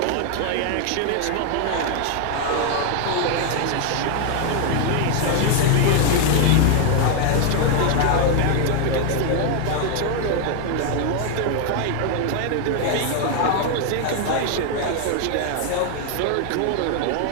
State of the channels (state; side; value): different; both; correlation 0.00